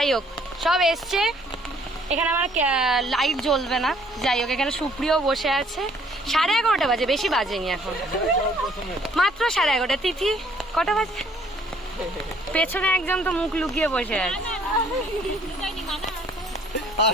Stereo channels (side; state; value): both; normal; correlation 0.61